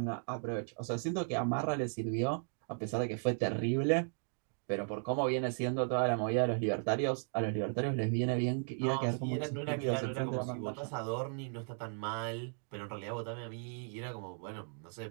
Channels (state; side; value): silent; left; 54 dB below the other